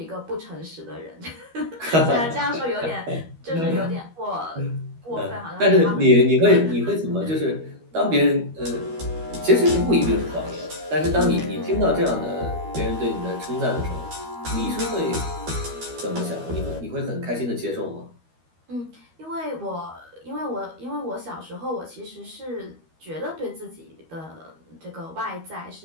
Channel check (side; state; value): left; late; 12 ms